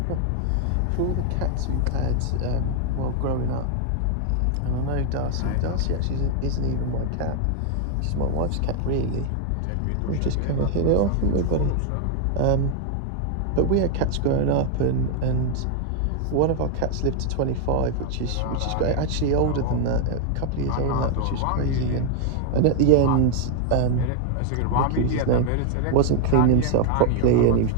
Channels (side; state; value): both; different; correlation 0.00